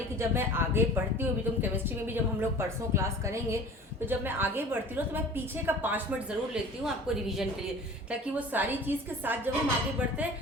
की, जब मैं आगे बढ़ती हूँ, अभी तुम केमिस्ट्री में भी जब हम लोग परसों क्लास करेंगे, तो जब मैं आगे बढ़ती हूँ तो मैं पीछे का 5 मिनट ज़रूर लेती हूँ आपको रिवीजन के लिए, ताकि वो सारी चीज़ के साथ जब हम आगे बढ़ते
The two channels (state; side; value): normal; both; correlation 0.43